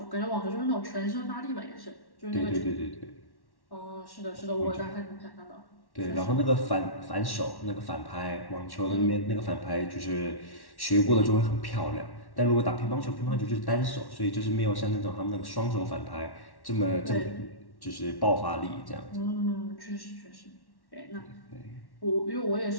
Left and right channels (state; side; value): late; right; 1.1 ms